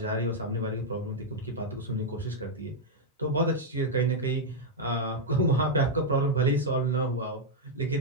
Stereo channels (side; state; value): both; normal; correlation -0.03